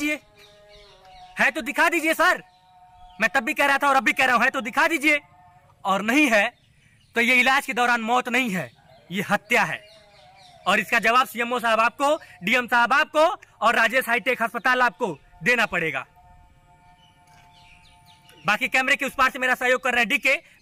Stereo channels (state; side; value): identical; both; correlation 1.00